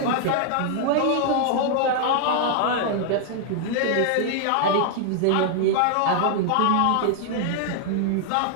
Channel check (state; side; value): different; both; correlation 0.00